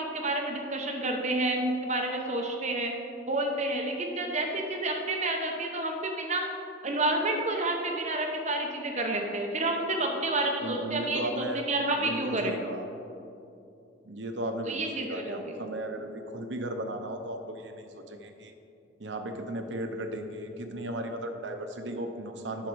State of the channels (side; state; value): both; normal; correlation 0.13